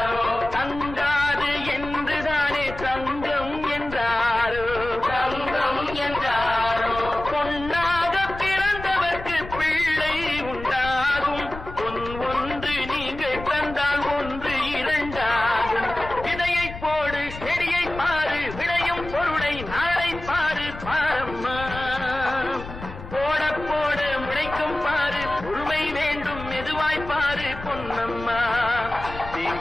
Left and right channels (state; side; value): noise; left; rumble, 12 dB below the sound